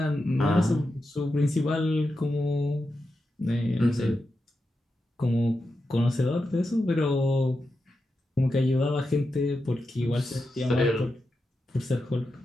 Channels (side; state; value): both; normal; correlation 0.89